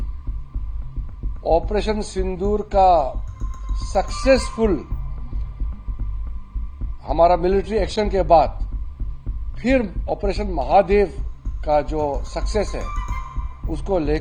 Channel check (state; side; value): identical; both; correlation 1.00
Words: Operation सिंदूर का successful हमारा मिलिट्री एक्शन के बाद फिर ऑपरेशन महादेव का जो सक्सेस है उसको